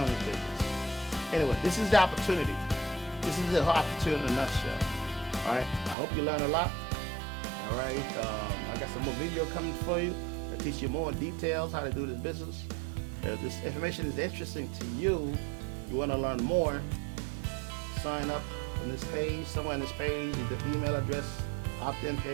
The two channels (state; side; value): drops out; left; at 6.0 s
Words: the business. Anyway, this is the opportunity. This is the opportunity in a nutshell. All right. I hope you learn a lot. All right. I got some more video coming for you that teach you more details how to do this business. If this information is interesting to you, you want to learn more, sign up on this page. Somewhere on this page, the email address, opt-in